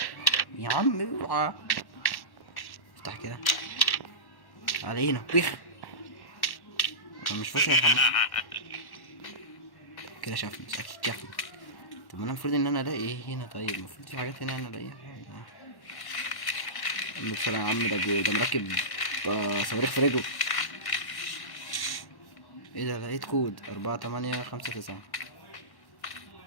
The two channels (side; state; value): right; late; 1.1 ms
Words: يا عم اوعى. افتح كده علينا بيخ. انا مش فاكر الحمام كده شافني اكيد شافني. طب انا المفروض ان انا الاقي ايه هنا؟ طيب المفروض في حاجات هنا انا الاقيها. بسرعة يا عم، ده مركب صواريخ في رجله. ايه ده؟ لقيت كود 4859.